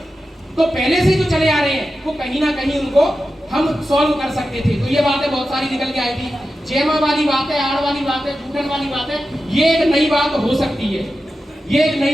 तो पहले से जो चले आ रहे हैं वो कहीं ना कहीं उनको हम सॉल्व कर सकते थे, तो ये बातें बहुत सारी निकल के आई थी, जेमा वाली बात है, आड़ वाली बात है, झूठन वाली बात है, ये एक नई बात हो सकती है, ये एक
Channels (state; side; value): normal; both; correlation 0.92